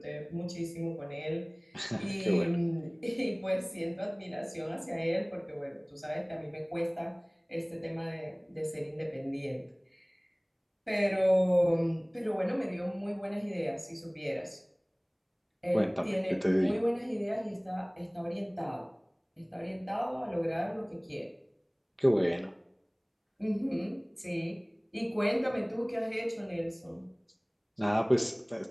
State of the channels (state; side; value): identical; both; correlation 1.00